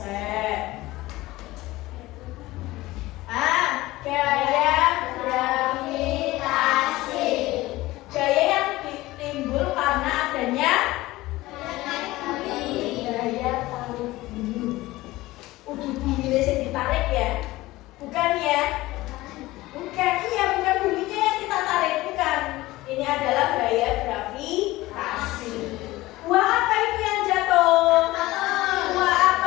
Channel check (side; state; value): right; quieter; 18.4 dB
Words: Gaya gravitasi. Gaya yang timbul karena adanya gaya tarik bumi. Bumi ini ditarik ya? Bukan ya? Bukan, iya bukan buminya yang kita tarik, bukan. Ini adalah gaya gravitasi. Buah apa itu yang jatuh? Buah